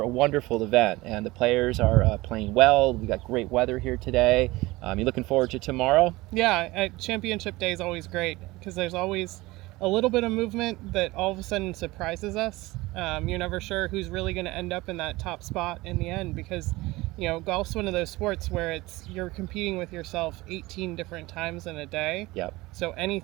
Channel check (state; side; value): quieter; left; 20.4 dB